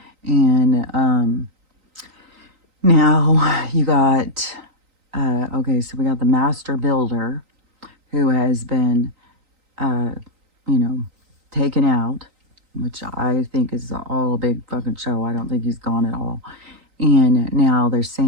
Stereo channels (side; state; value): left; late; 3.9 ms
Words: And now you got, okay, so we got the master builder who has been, you know, taken out, which I think is all a big fucking show. I don't think he's gone at all. And now they're